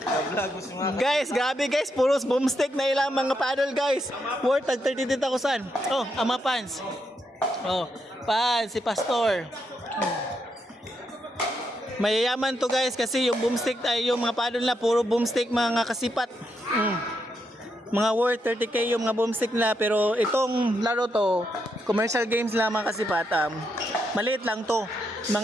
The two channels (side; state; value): both; normal; correlation 0.80